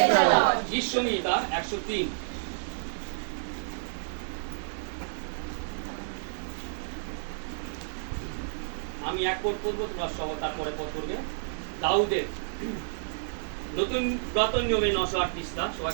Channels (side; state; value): left; silent; digital silence